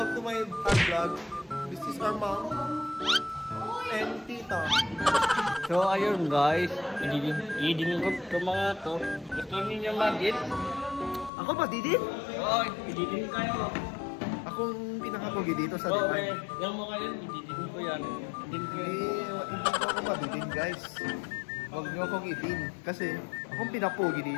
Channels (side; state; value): right; drops out; at 11.3 s